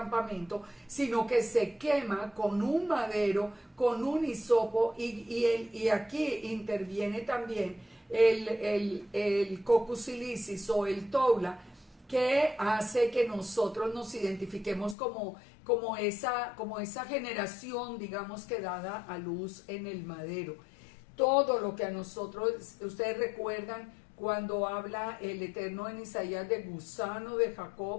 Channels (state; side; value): drops out; right; at 15.0 s